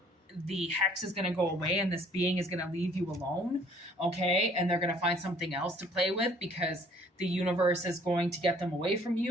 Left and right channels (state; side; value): normal; both; correlation 0.58